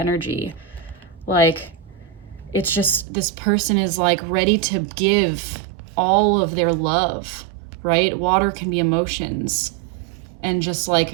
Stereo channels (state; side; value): drops out; left; at 3.1 s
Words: Like, it's just, this person is like ready to give all of their love, right? Water can be emotions, and just